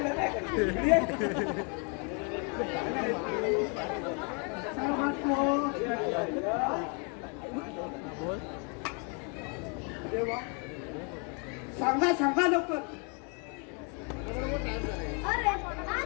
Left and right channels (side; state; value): right; quieter; 36.5 dB